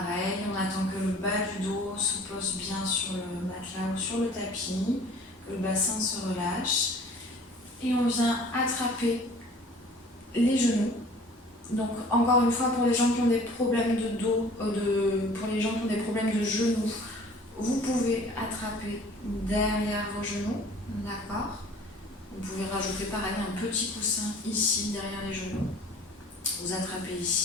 on attend que le bas du dos se pose bien sur le matelas ou sur le tapis, que le bassin se relâche. Et on vient attraper les genoux. Donc encore une fois, pour les gens qui ont des problèmes de dos, pour les gens qui ont des problèmes de genoux, vous pouvez attraper derrière vos genoux, d'accord? Vous pouvez rajouter pareil un petit coussin ici derrière les genoux. Vous attrapez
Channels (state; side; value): normal; both; correlation 0.49